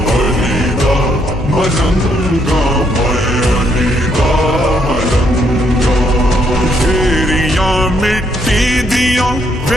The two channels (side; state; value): both; normal; correlation 0.73